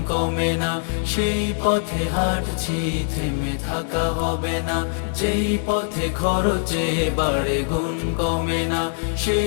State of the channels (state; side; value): silent; right; 64 dB below the other